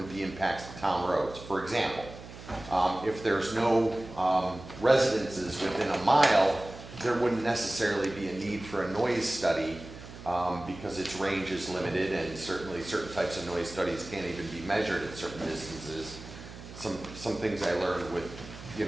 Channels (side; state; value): right; noise; hum, 15 dB below the sound